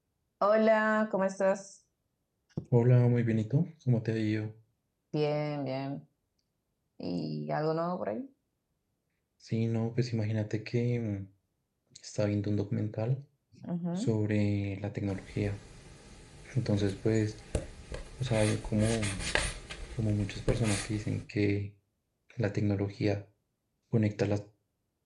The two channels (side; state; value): both; identical; correlation 1.00